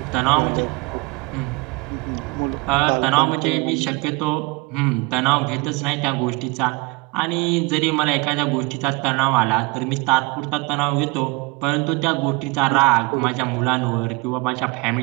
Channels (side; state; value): left; quieter; 25.9 dB